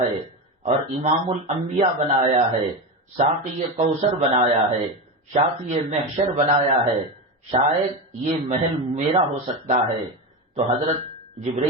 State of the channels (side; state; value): both; normal; correlation 0.18